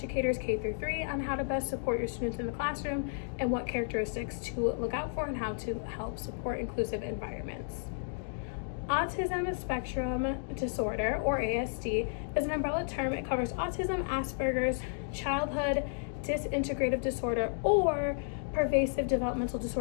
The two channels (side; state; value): right; silent; digital silence